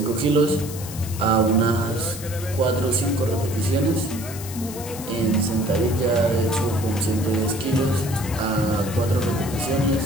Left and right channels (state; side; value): noise; left; hiss, 12 dB below the sound